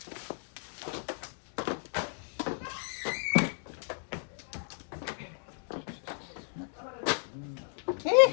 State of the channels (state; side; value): silent; right; digital silence